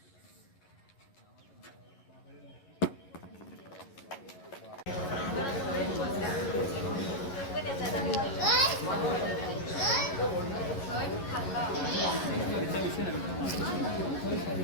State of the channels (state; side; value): late; right; 11 ms